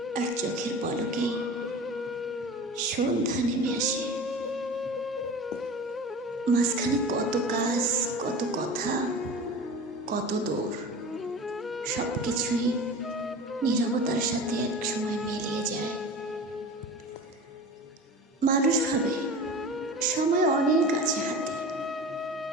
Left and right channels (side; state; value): both; normal; correlation 0.34